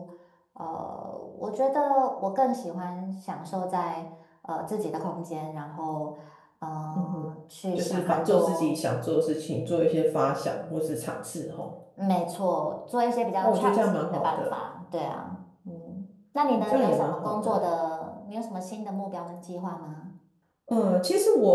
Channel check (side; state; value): both; identical; correlation 1.00